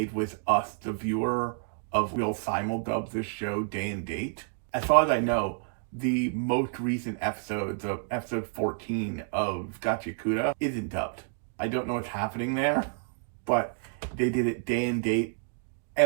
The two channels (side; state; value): left; silent; digital silence